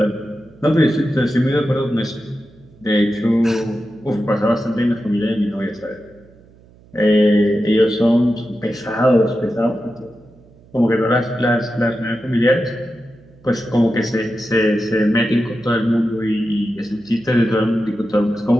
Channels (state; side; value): noise; right; hum, 27 dB below the sound